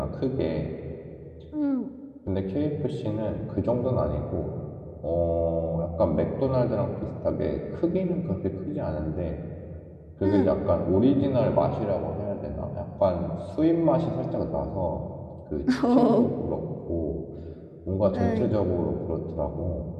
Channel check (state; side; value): identical; both; correlation 1.00